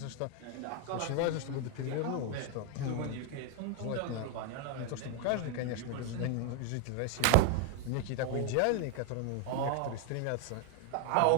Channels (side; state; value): both; different; correlation 0.01